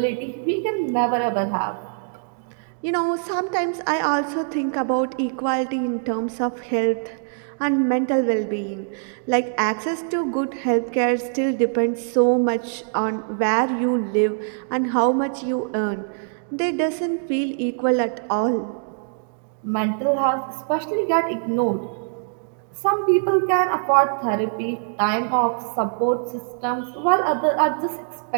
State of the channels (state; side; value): silent; left; digital silence